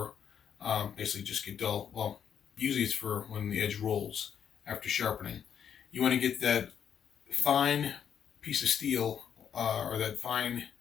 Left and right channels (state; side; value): quieter; right; 8.3 dB